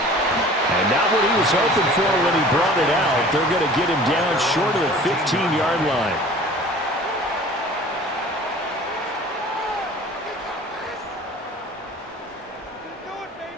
And not what he was hoping for when he brought it out. They're going to get him down short of the 15-yard line.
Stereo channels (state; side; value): normal; both; correlation 0.46